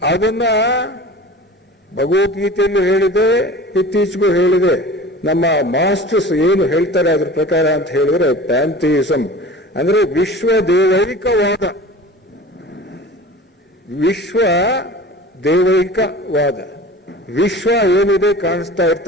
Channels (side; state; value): both; normal; correlation 0.38